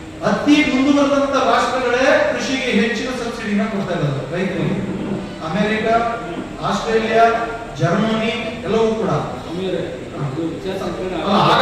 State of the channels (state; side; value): identical; both; correlation 1.00